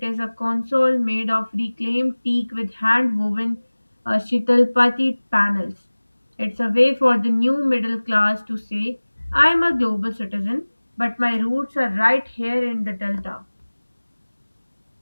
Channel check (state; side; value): inverted; both; correlation -1.00